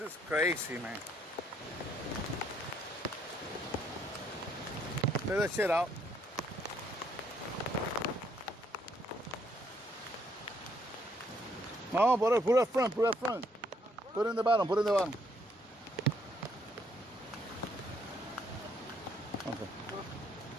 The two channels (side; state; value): both; normal; correlation 0.69